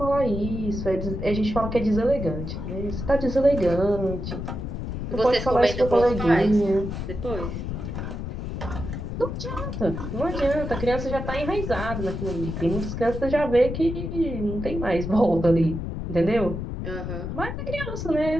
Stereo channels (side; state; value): left; noise; rumble, 5 dB below the sound